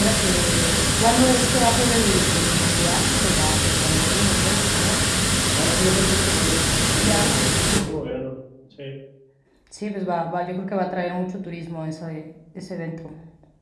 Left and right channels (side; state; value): both; identical; correlation 1.00